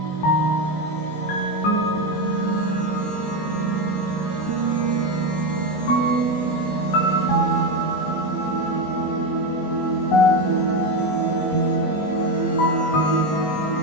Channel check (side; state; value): right; late; 20 ms